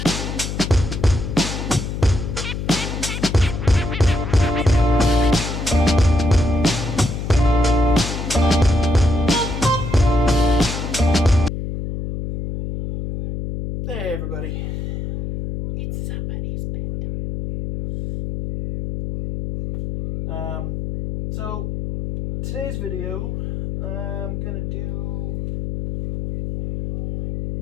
Hey everybody. It's somebody's bedtime. So today's video, I'm gonna do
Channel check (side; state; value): left; noise; hum, 5 dB below the sound